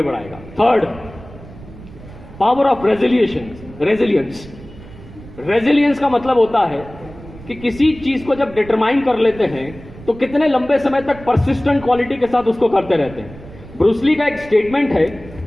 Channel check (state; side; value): noise; right; rumble, 18 dB below the sound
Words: बढ़ाएगा। Third, power of resilience. Resilience का मतलब होता है कि किसी चीज को जब डिटरमाइन कर लेते हैं तो कितने लंबे समय तक परसिस्टेंट क्वालिटी के साथ उसको करते रहते हैं। ब्रूस ली का एक स्टेटमेंट है